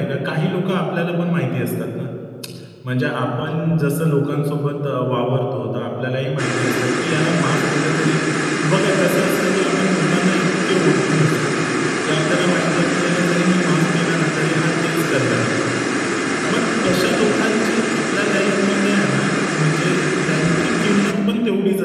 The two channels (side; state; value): both; identical; correlation 1.00